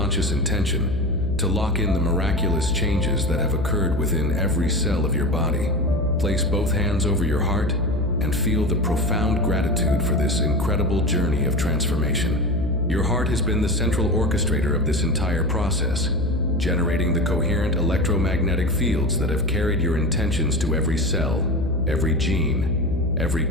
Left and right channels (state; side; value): noise; left; hum, 4 dB below the sound